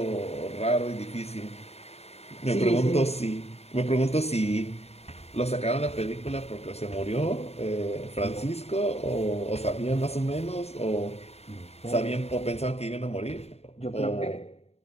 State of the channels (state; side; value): late; right; 0.30 ms